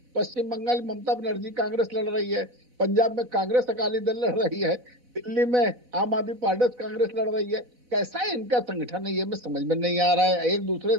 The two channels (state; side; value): late; left; 4.0 ms